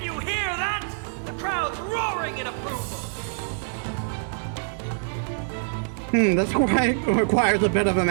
you hear that? The crowd's roaring in approval! This requires a bit of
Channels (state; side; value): silent; left; 60 dB below the other